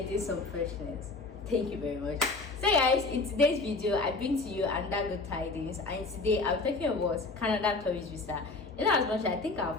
some freshness. Thank you very much. So guys, in today's video I bring to you another good tidings, and today I'm talking about Canada tourist visa. As much I think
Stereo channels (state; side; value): quieter; right; 3.5 dB